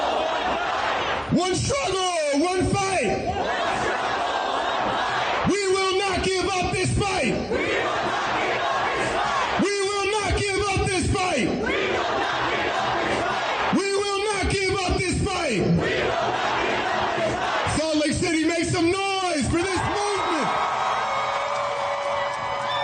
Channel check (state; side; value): identical; both; correlation 1.00